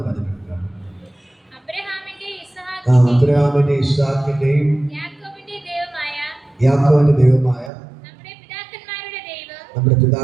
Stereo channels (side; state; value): left; drops out; at 7.7 s